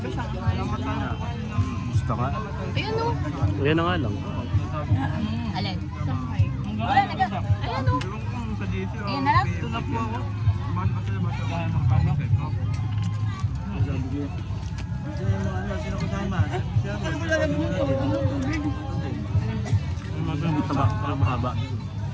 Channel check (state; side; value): identical; both; correlation 1.00